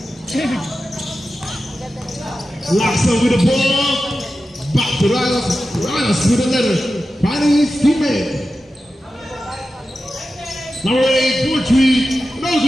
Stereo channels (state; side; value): normal; both; correlation 0.92